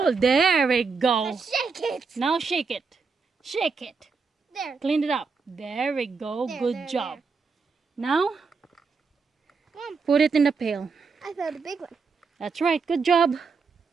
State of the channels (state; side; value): quieter; left; 4.9 dB